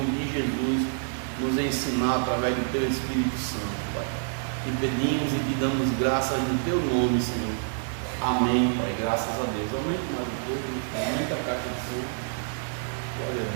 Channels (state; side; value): silent; left; digital silence